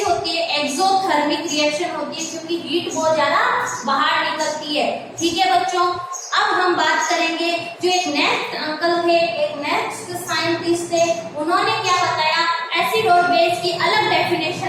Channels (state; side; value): identical; both; correlation 1.00